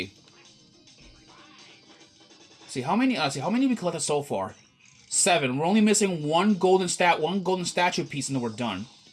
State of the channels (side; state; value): both; identical; correlation 1.00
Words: See how many we collected so far? 7. We're only missing one golden statue piece and then we're done.